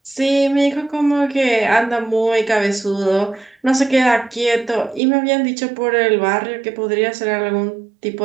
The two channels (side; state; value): left; drops out; at 5.0 s